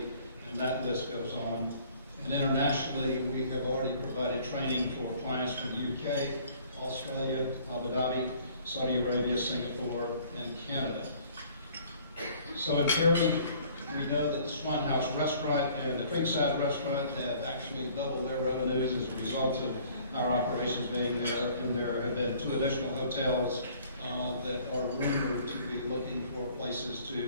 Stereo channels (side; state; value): both; inverted; correlation -0.55